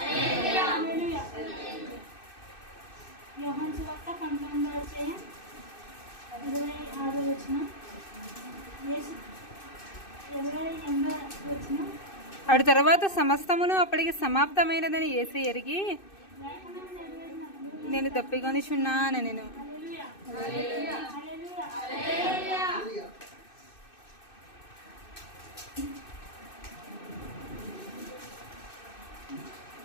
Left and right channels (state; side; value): late; right; 2.6 ms